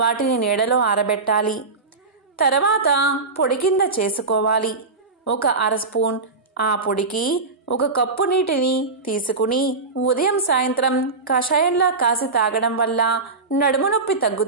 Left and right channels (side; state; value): left; quieter; 4.0 dB